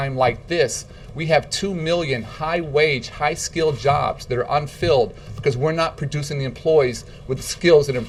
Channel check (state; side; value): identical; both; correlation 1.00